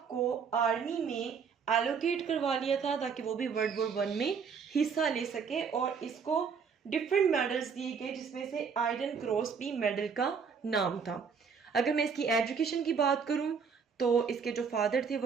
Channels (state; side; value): quieter; left; 6.1 dB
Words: को आर्मी में एलोकेट करवा लिया था ताकि वो भी वर्ल्ड वॉर वन में हिस्सा ले सके, और इसको डिफरेंट मेडल्स दिए गए जिसमें से आयरन क्रॉस भी मेडल का नाम था। अगर मैं इसकी एजुकेशन की बात करूं तो इसके जो फादर थे